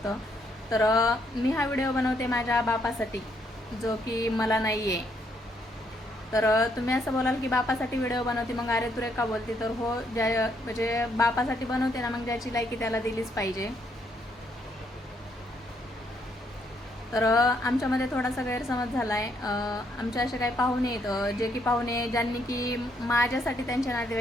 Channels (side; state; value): both; normal; correlation 0.73